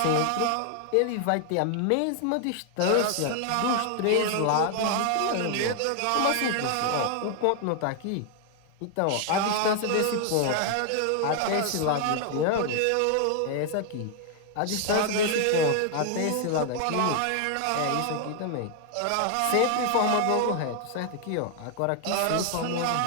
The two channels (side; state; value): both; different; correlation 0.00